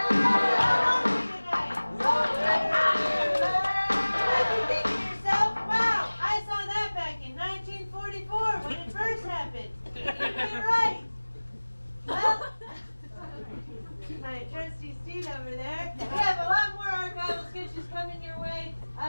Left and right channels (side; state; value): both; inverted; correlation -1.00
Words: My trusty Steve over there. We have a lot more archival sketches coming your way.